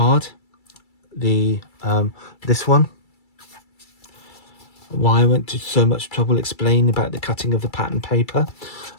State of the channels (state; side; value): late; right; 2.3 ms